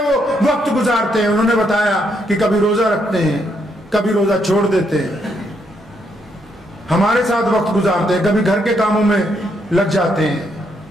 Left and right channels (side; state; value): both; normal; correlation 0.76